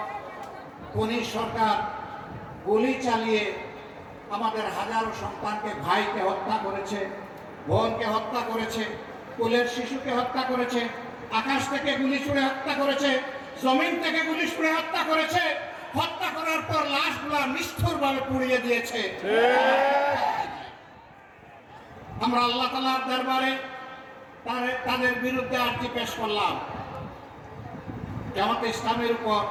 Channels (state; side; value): identical; both; correlation 1.00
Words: খনি সরকার গুলি চালিয়ে আমাদের হাজারো সন্তানকে, ভাইকে হত্যা করেছে, বোনকে হত্যা করেছে, কোলের শিশুকে হত্যা করেছে, আকাশ থেকে গুলি ছুড়ে হত্যা করেছে, জমিন থেকে গুলি ছুড়ে হত্যা করেছে, হত্যা করার পর লাশগুলা নিষ্ঠুরভাবে পুড়িয়ে দিয়েছে। আমরা আল্লাহ তাআলার দরবারে তাদের বিরুদ্ধে আর্জি পেশ করলাম। জামাতে ইসলামের উপর